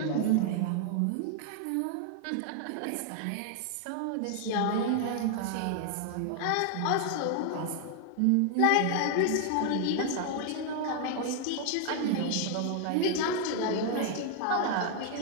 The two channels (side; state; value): both; different; correlation 0.00